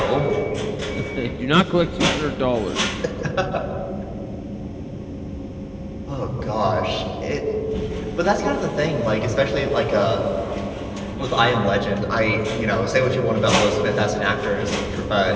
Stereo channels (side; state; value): both; identical; correlation 1.00